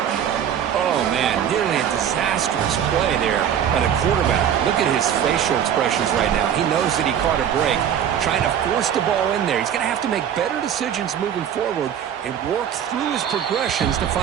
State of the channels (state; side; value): quieter; left; 9.2 dB